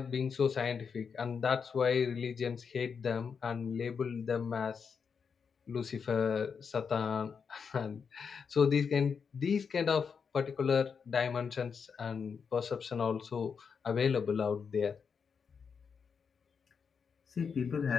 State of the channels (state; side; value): quieter; right; 6.1 dB